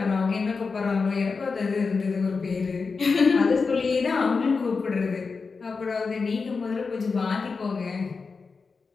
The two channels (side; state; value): right; quieter; 4.7 dB